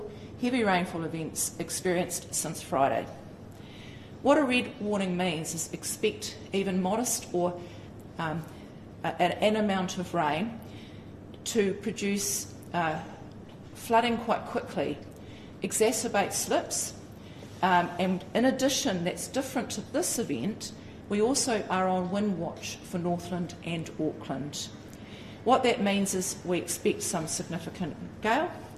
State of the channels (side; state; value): both; identical; correlation 1.00